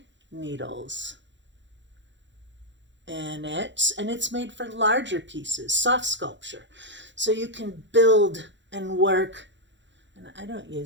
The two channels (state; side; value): late; left; 0.53 ms